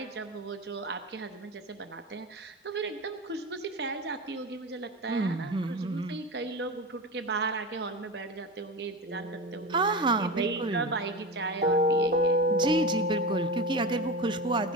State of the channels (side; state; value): both; normal; correlation 0.25